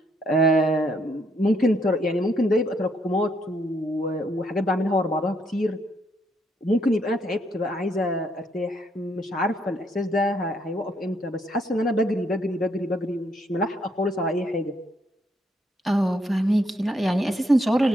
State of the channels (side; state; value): both; normal; correlation 0.72